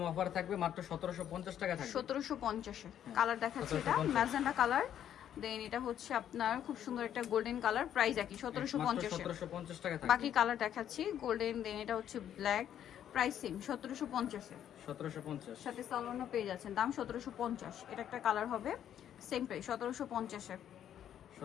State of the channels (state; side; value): quieter; right; 10.2 dB